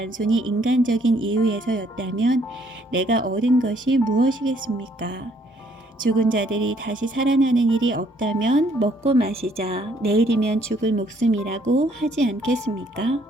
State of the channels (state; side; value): normal; both; correlation 0.65